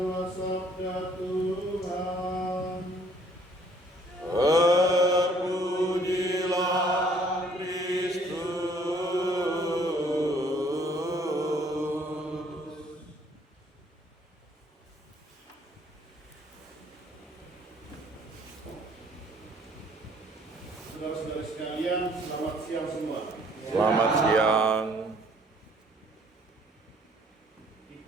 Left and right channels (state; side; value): normal; both; correlation 0.60